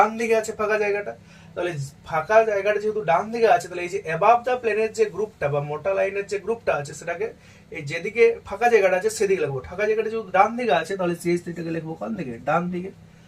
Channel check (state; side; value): identical; both; correlation 1.00